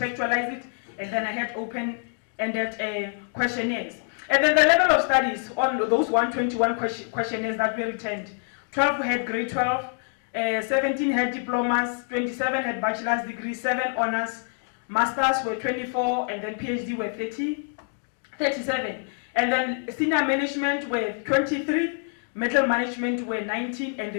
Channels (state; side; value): silent; right; 56 dB below the other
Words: it, and then I had open-ended questionnaires. And then the level of studies on those 121 questionnaires that were returned, 12 had grade 12, 17 had diplomas, 27 had bachelor's degrees, 7 honors, masters were 24, and then PhD were 37. And then senior management were 23, middle management were 19, and